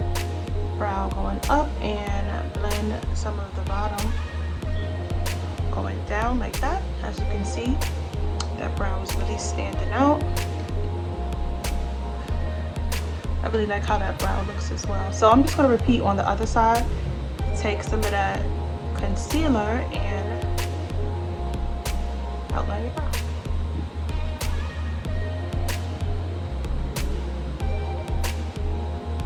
brow going up and blend some of the bottom going down like that. As you can see, that brow is really standing out. I really like how that brow looks as well. So I'm just going to repeat on the other side. Take some of that concealer and outline your brow.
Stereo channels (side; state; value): both; identical; correlation 1.00